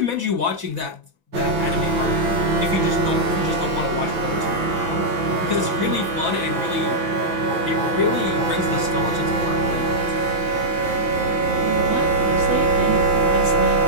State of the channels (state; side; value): late; left; 6.0 ms